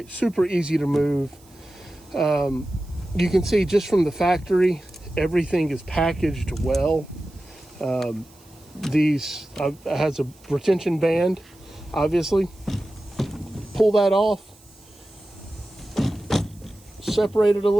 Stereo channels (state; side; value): noise; right; hiss, 28 dB below the sound